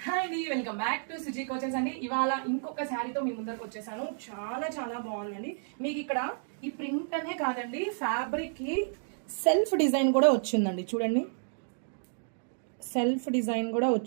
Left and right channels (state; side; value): silent; left; digital silence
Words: Hi అండి, welcome back to Suji coaches అండి. ఇవాళ ఇంకొక శారీతో మీ ముందరకు వచ్చేసాను. చాలా చాలా బాగుందండి. మీకు ఇక్కడ ఈ ప్రింట్ అనే కాదండి, ఫ్యాబ్రిక్ కి సెల్ఫ్ డిజైన్ కూడా వచ్చిందండి. చూడండి, సెల్ఫ్ డిజైన్ కూడా